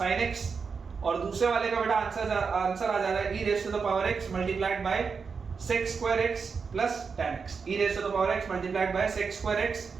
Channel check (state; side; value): quieter; left; 5.4 dB